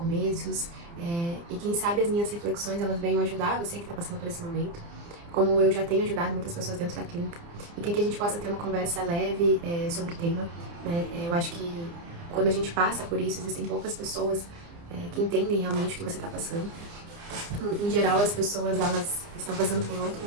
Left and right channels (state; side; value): late; left; 29 ms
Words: e quem sabe as minhas reflexões elas venham ajudar você que está passando por esse momento, como eu já tenho ajudado muitas pessoas dentro da clínica, e que aqui a gente possa ter uma conversa leve sobre o tema, né? Eu acho que quando a gente passa por isso, existem poucas pessoas que entendem realmente o que você está passando. Em geral, as pessoas, elas estão passando por outro